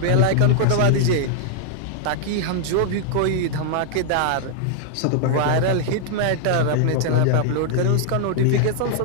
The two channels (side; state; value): both; different; correlation -0.01